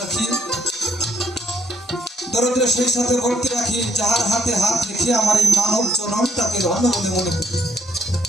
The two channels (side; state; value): both; normal; correlation 0.69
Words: রাখি, দরদের সেই সাথে ভক্তি রাখি, যাহার হাতে হাত রেখে আমার এই মানব জনমটাকে ধন্য বলে মনে করি।